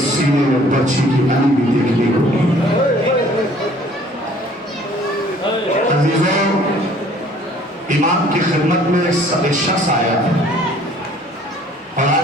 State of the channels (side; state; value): both; normal; correlation 0.55